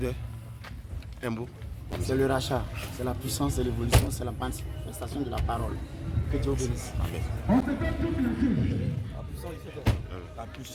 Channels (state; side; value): identical; both; correlation 1.00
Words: un mot. C'est le rachat, c'est la puissance, c'est l'évolution, c'est la manifestation de la parole. Que Dieu bénisse. Amen. La